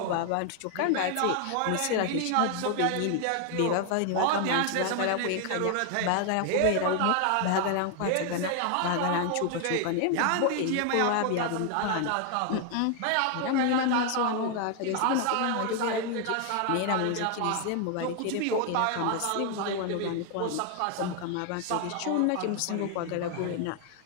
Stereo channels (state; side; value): different; both; correlation 0.00